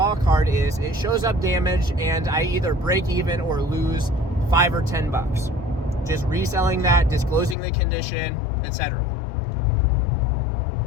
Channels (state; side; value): drops out; right; at 7.6 s